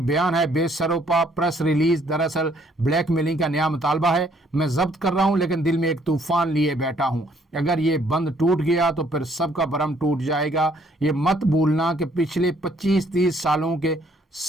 ہے بے سروپا پریس ریلیز دراصل بلیک میلنگ کا نیا مطالبہ ہے۔ میں ضبط کر رہا ہوں لیکن دل میں ایک طوفان لیے بیٹھا ہوں۔ اگر یہ بند ٹوٹ گیا تو پھر سب کا بھرم ٹوٹ جائے گا۔ یہ مت بھولنا کہ پچھلے 25-30 سالوں کے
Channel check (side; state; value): both; normal; correlation 0.65